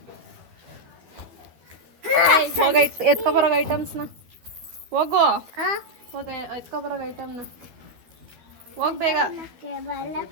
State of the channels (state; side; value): late; left; 13 ms